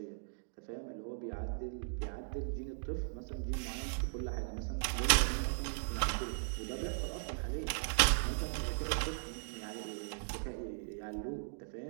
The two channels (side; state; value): left; silent; digital silence